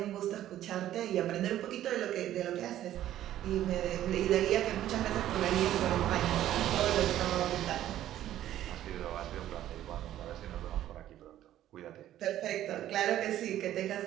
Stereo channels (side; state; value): left; quieter; 12.6 dB